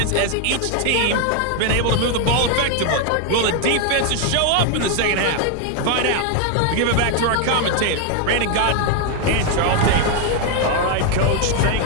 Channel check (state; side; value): different; both; correlation 0.01